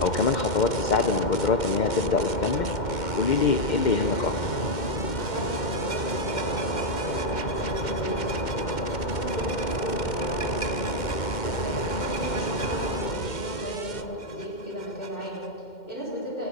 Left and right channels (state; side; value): late; right; 2.1 ms